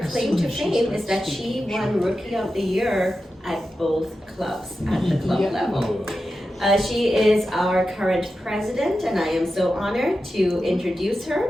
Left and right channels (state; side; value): normal; both; correlation 0.91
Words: claim to fame is that she won Rookie of the Year at both clubs, at the club level. She is our current president, and I am so honored to introduce her